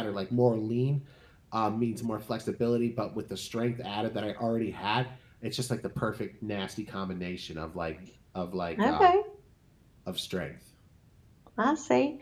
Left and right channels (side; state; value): both; identical; correlation 1.00